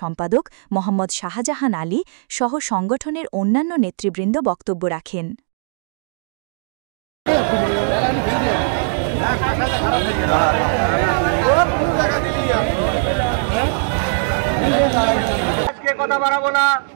সম্পাদক মোহাম্মদ শাহজাহান আলী সহ সংগঠনের অন্যান্য নেতৃবৃন্দ বক্তব্য রাখেন। কথা বাড়াবো না,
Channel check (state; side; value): silent; left; digital silence